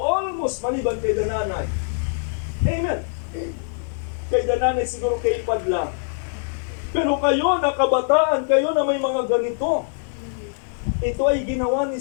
almost maliban kay Dananay. Amen. Kay Dananay siguro kay Padlang. Pero kayo na kabataan, kayo na may mga ganito. Ito ay ginawa ni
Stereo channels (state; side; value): silent; right; digital silence